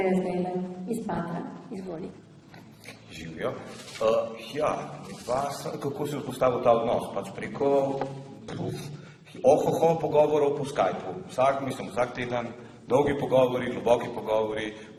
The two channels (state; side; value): identical; both; correlation 1.00